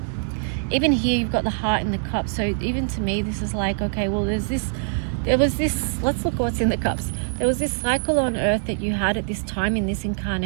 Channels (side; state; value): left; silent; 56 dB below the other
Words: Even here you've got the Heart and the Cup. So even to me, this is like, okay, well, there was this, let's look what's in the cups. There was this cycle on earth that you had at this time in this